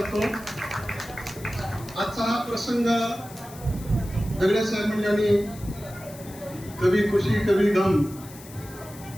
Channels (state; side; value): noise; left; hiss, 18 dB below the sound